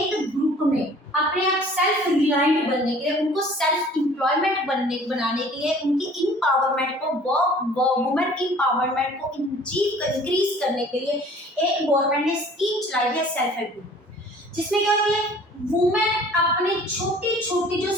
ग्रुप में अपने आप सेल्फ रिलायंट बनने के लिए, उनको सेल्फ एम्प्लॉयमेंट बनाने के लिए, उनकी इम्पावरमेंट को, वुमेन इम्पावरमेंट को इंक्रीज करने के लिए एक गवर्नमेंट ने स्कीम चलाई है सेल्फ हेल्प ग्रुप, जिसमें क्या होती है, वुमेन अपने छोटी छोटी जो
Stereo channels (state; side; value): normal; both; correlation 0.50